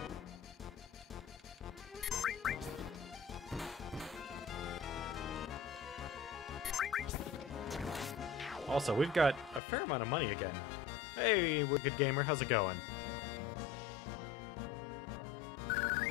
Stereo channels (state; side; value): drops out; right; at 9.6 s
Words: Also, we've got a fair amount of money again. Hey, Wicked Gamer, how's it going?